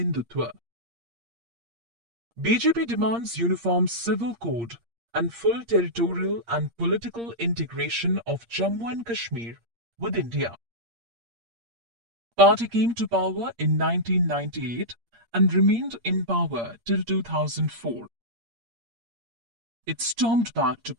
BJP demands uniform civil code and full territorial and political integration of Jammu and Kashmir with India. Party came to power in 1998 and remained in power till 2004. It stormed back to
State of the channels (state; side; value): late; left; 8.6 ms